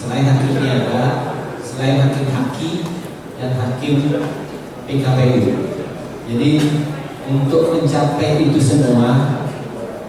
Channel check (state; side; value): identical; both; correlation 1.00